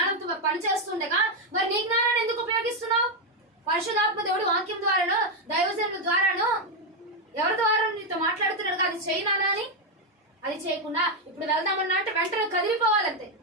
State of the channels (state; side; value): normal; both; correlation 0.04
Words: పని చేస్తుండగా మరి నీ జ్ఞానాన్ని ఎందుకు ఉపయోగిస్తున్నావు? పరిశుద్ధాత్మ దేవుడు వాక్యం ద్వారానో దైవజనుల ద్వారానో ఎవరి ద్వారా నీతో మాట్లాడుతున్నాడు. అది చేయనానా అని అది చేయకుండా ఇప్పుడు వెళ్దామన్నా అంటే వెంటనే కదిలిపోవాలంతే.